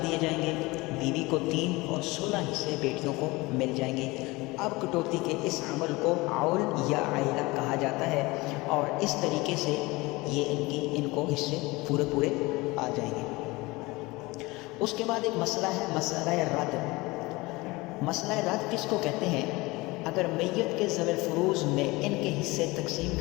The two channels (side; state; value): right; quieter; 22.6 dB